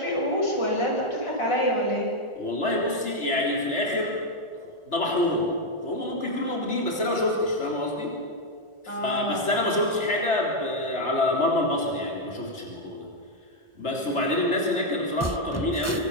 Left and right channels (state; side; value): late; right; 1.4 ms